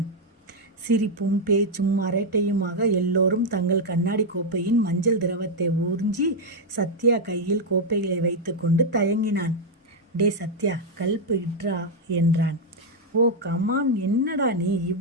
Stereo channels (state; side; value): normal; both; correlation 0.01